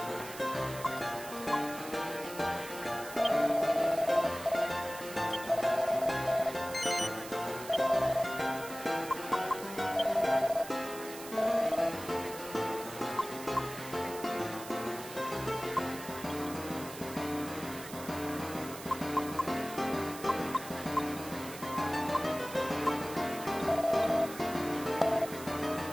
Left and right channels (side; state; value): right; noise; hiss, 13 dB below the sound